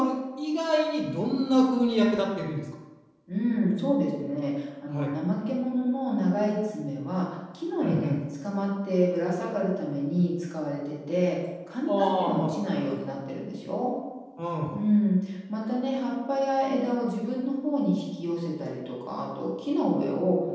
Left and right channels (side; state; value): both; identical; correlation 1.00